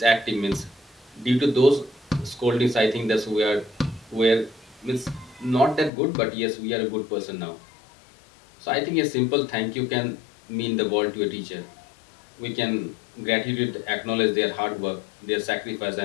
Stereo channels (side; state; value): right; drops out; at 5.9 s